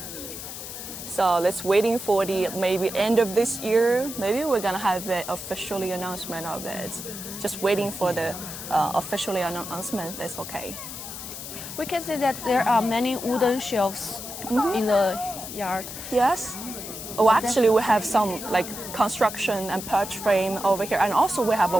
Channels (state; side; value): noise; left; hiss, 9 dB below the sound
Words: So let's waiting for the maybe end of this year. Maybe we're gonna have the officially announcement of it. Just waiting for the officially announcement. That's okay. We can see that there are many wooden shelves in the yard. Yes. Oh, actually, we have some like construction and perch frame over here, and also we have